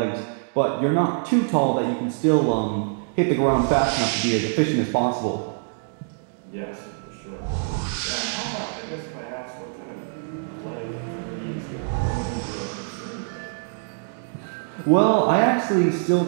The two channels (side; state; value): left; silent; digital silence